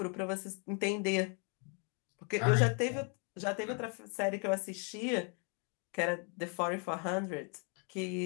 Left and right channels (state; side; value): quieter; right; 37.9 dB